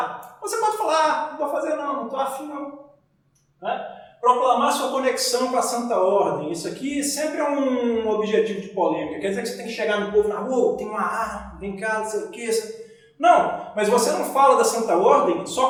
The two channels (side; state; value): both; identical; correlation 1.00